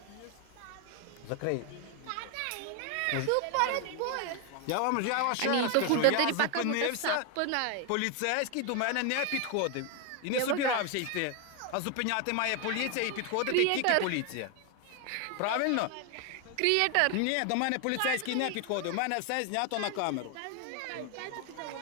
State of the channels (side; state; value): both; different; correlation 0.01